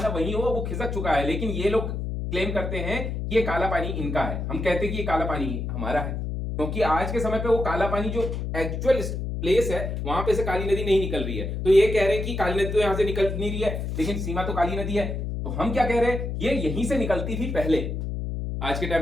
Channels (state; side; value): noise; left; hum, 3 dB below the sound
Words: वही हो, वो खिसक चुका है, लेकिन ये लोग क्लेम करते हैं कि ये काला पानी इनका है। हम कहते हैं कि ये काला पानी हमारा है, क्योंकि आज के समय पे वो काला पानी जो एक्चुअल प्लेस है वहां पे से काली नदी नहीं निकल रही है। तो ये कह रहे हैं कि काली नदी तो यहां से निकल नहीं रही है, लेकिन सीमा तो काली नदी है। तो हम क्या कह रहे हैं, ये यहीं से निकलती थी पहले, आज के